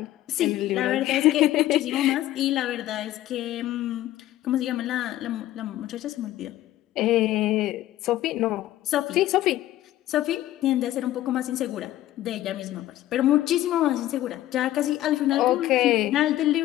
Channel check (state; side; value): quieter; right; 14.3 dB